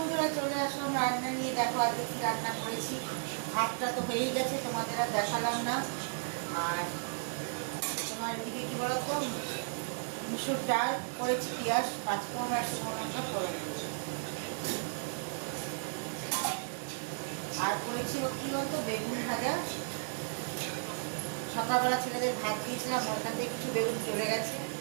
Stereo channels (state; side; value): silent; left; digital silence